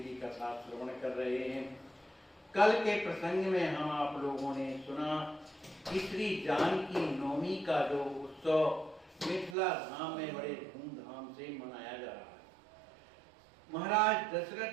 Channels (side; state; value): left; drops out; at 9.6 s